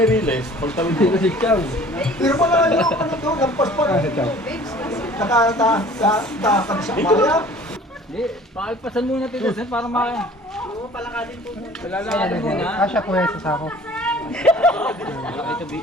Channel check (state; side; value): normal; both; correlation 0.49